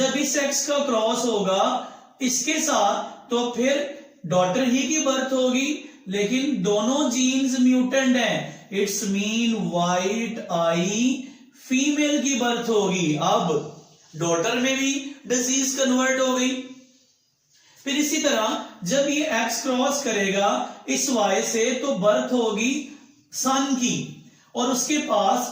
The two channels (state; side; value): identical; both; correlation 1.00